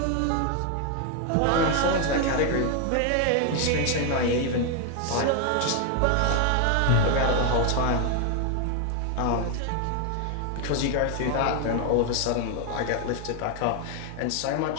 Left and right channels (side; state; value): both; different; correlation 0.01